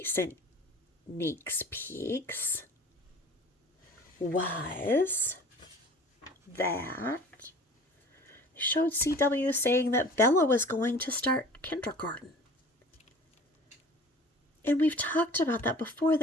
Sneaks Peeks was that they showed CW saying that Bella was going to start kindergarten. And we've talked about that before.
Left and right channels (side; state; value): both; normal; correlation 0.45